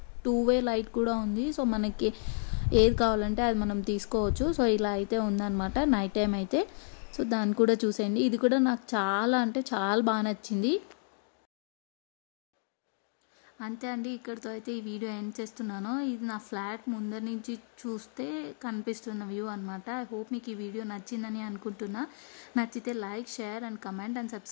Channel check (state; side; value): silent; right; 57 dB below the other